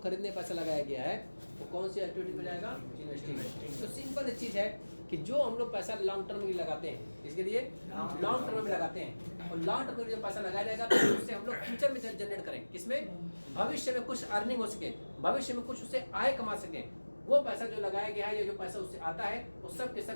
पैसा लगाया गया है वो कौन सी एक्टिविटी में जाएगा, इन्वेस्टिंग। तो सिंपल चीज़ है कि जो हम लोग पैसा लॉन्ग टर्म में लगाते हैं, इसके लिए लॉन्ग टर्म में लगाते हैं, और लॉन्ग टर्म में जो पैसा लगाया जाएगा तो उससे हम लोग फ्यूचर में जनरेट करें, किसमें, भविष्य में कुछ अर्निंग हो सके, भविष्य में कुछ उससे आय कमा सकें। वो पैसा जो लगाया गया है या जो पैसा उससे आता है वो सब के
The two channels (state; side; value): inverted; both; correlation -1.00